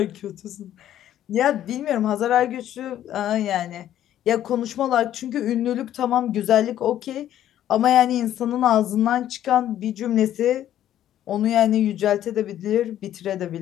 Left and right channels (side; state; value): right; quieter; 11.7 dB